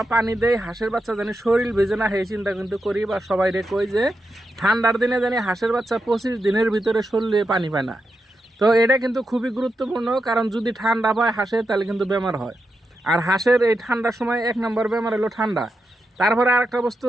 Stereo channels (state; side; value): normal; both; correlation 0.87